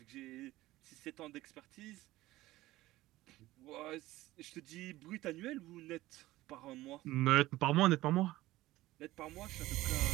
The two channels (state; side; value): quieter; left; 17.1 dB